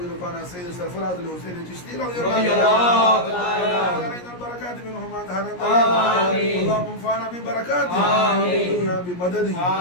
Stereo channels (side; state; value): right; late; 17 ms